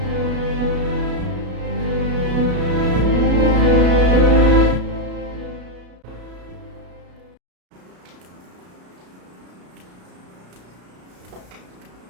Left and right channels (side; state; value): left; late; 33 ms